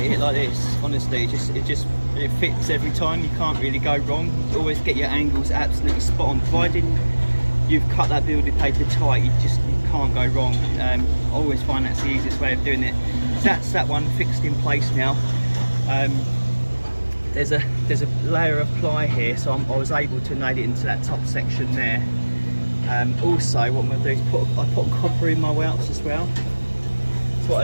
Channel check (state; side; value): inverted; both; correlation -1.00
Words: it like this, honestly, it fits every time. You can't really go wrong. You always get your angles absolutely spot on. Provided you've cut that building paper tight, you can't go wrong. I always find that's the easiest way of doing it. So that's that one fixed in place now. There's a layer of ply here, so I was able to nail it into that top section there. Also, what I'm going to do is I put copper in my welts as well. So